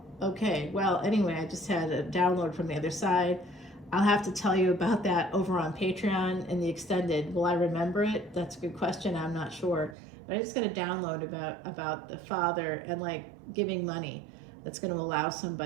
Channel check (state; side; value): drops out; left; at 10.0 s